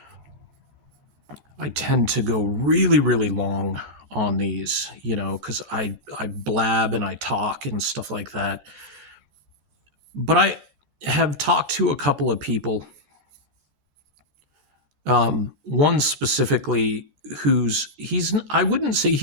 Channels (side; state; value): left; late; 13 ms